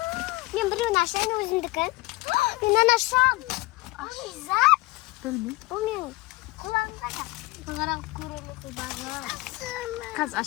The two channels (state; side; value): quieter; right; 21.2 dB